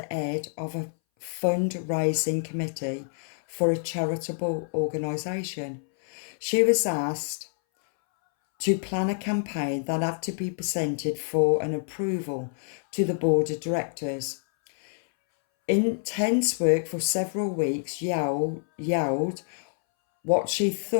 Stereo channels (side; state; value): right; silent; 60 dB below the other